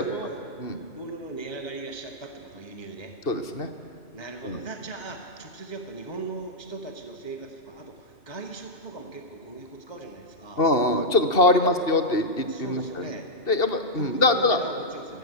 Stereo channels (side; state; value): right; late; 2.7 ms